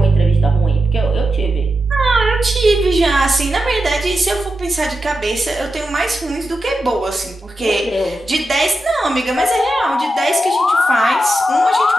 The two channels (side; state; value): both; normal; correlation 0.89